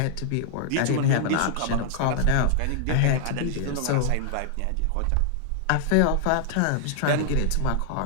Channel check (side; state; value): both; different; correlation -0.01